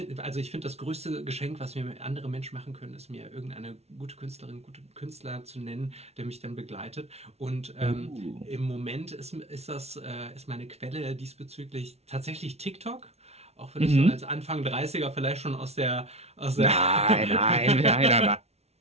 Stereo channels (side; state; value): left; late; 0.31 ms